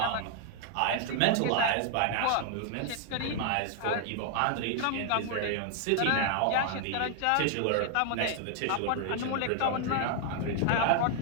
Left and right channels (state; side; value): different; both; correlation 0.00